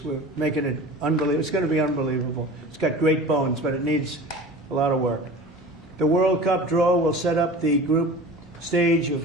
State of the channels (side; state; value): both; normal; correlation 0.38